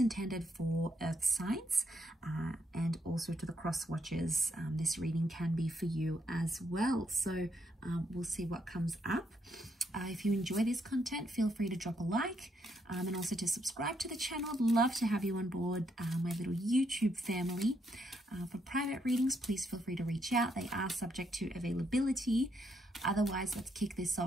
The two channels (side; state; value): both; normal; correlation 0.76